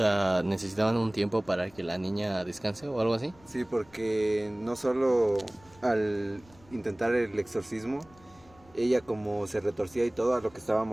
¿necesitaban un tiempo para que la niña descanse o algo así? Sí, porque no solo al intentar el exorcismo, ella como se retorcía y todo, a lo que estaba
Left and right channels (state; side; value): noise; left; rumble, 27 dB below the sound